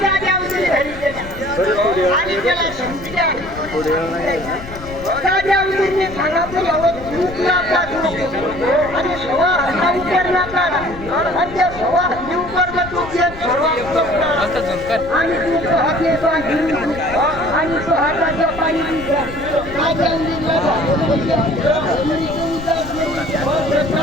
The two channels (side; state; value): left; noise; rumble, 14 dB below the sound